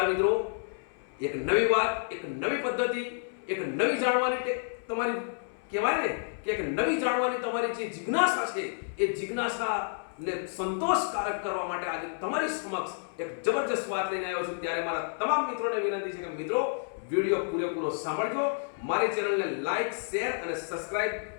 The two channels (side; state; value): right; silent; 58 dB below the other